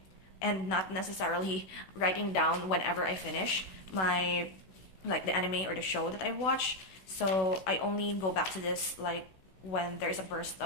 and not necessarily writing down whenever I finish the anime or the show that I watch. So I only go back to this like when there's a burst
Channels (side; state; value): right; late; 16 ms